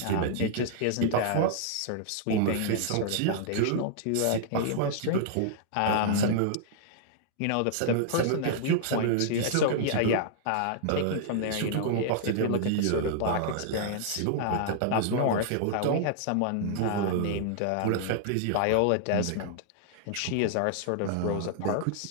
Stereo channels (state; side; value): different; both; correlation -0.01